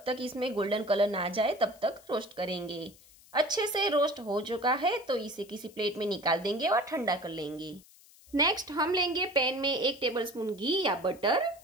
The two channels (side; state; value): left; noise; hiss, 25 dB below the sound